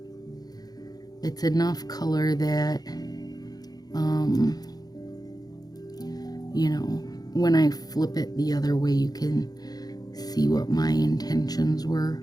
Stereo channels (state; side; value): late; right; 0.19 ms